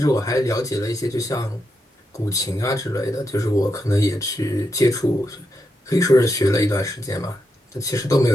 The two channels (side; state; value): both; normal; correlation 0.84